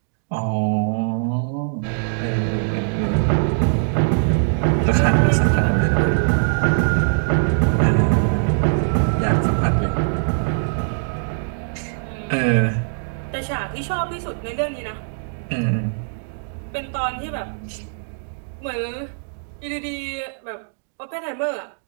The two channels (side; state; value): left; silent; digital silence